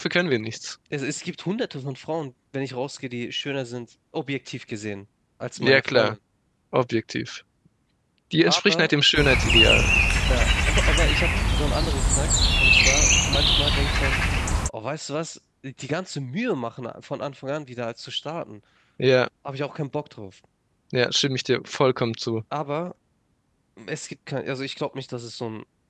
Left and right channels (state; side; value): identical; both; correlation 1.00